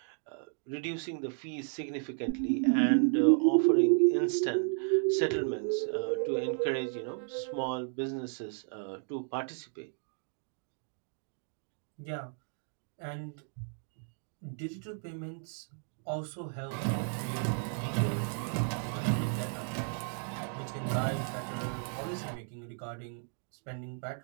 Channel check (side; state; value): left; silent; 55 dB below the other